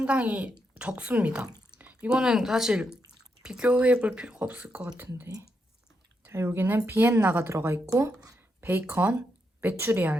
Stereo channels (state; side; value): normal; both; correlation 0.82